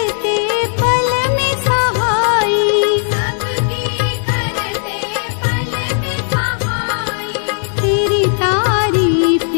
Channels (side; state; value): right; silent; digital silence